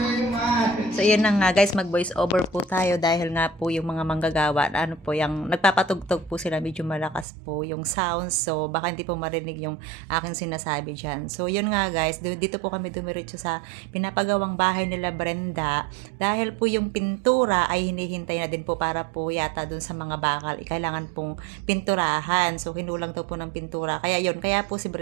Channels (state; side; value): drops out; left; at 7.2 s